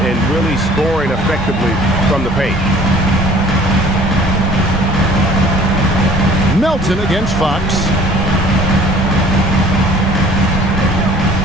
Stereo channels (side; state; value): both; normal; correlation 0.51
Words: and really scoring effectively from the paint. Melton against Fox.